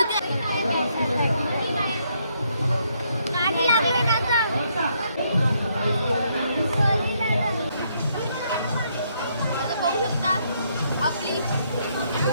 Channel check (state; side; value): inverted; both; correlation -0.73